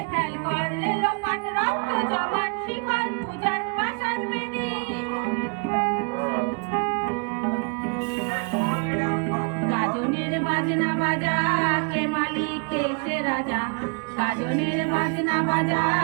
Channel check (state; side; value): quieter; left; 38.0 dB